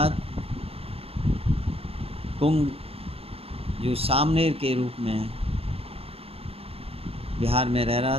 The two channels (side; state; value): left; late; 0.28 ms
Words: कुंग जो सामनेर के रूप में बिहार में रह रहा